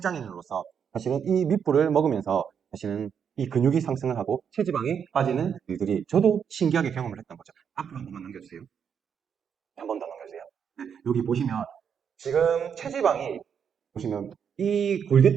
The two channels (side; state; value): left; quieter; 7.5 dB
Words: 사실은 이 밑불을 먹으면서 사실은 이 근육이 상승을 하고 체지방이 빠지는 일들이 저도 신기하게 경험을 했던 거죠. 앞으로 한 번만 넘겨주세요. 한 번 더 넘겨주세요. 여기 보시면 지금 체지방이 보시면 이